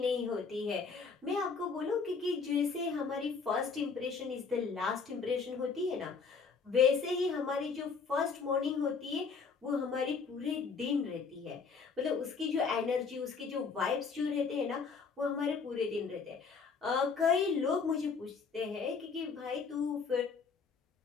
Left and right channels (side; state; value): right; quieter; 5.2 dB